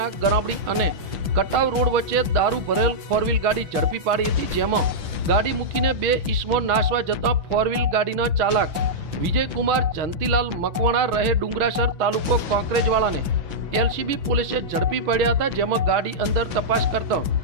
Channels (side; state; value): left; late; 6.4 ms